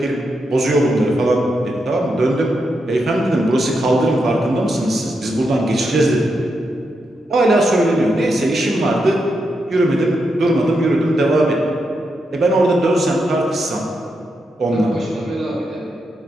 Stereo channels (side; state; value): both; normal; correlation 0.84